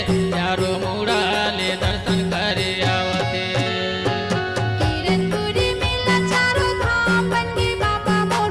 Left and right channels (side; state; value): both; identical; correlation 1.00